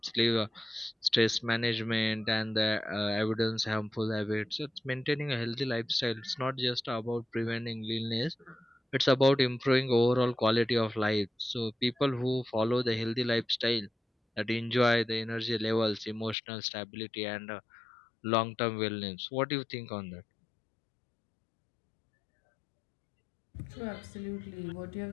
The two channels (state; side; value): drops out; right; at 16.4 s